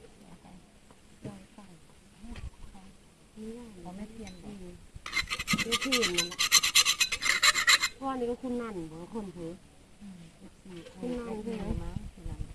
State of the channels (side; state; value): both; identical; correlation 1.00